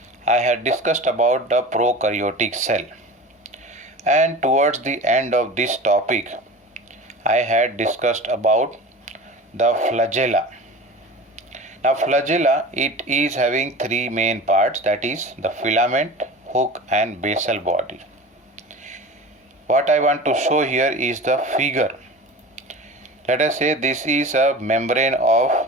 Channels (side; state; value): both; normal; correlation 0.35